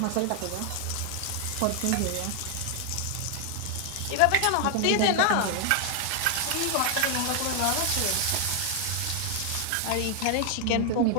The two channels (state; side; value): different; both; correlation 0.00